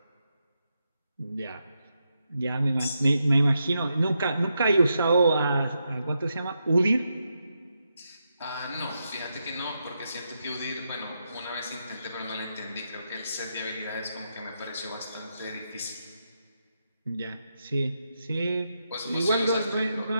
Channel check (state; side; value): inverted; both; correlation -0.84